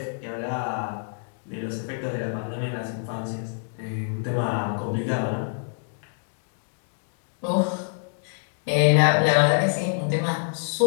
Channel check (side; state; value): right; silent; digital silence